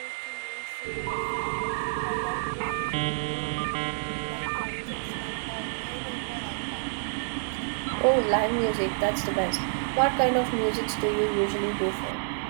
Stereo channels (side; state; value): left; silent; digital silence